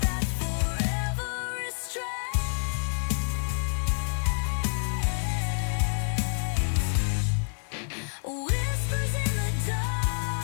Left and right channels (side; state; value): right; silent; 59 dB below the other